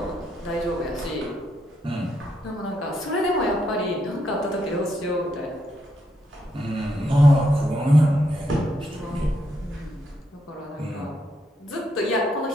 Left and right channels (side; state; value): both; normal; correlation 0.78